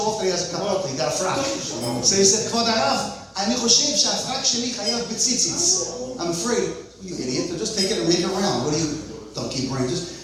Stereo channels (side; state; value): both; identical; correlation 1.00